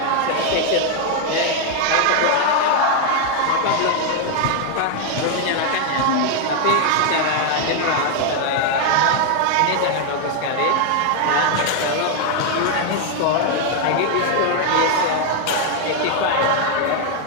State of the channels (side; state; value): both; different; correlation 0.01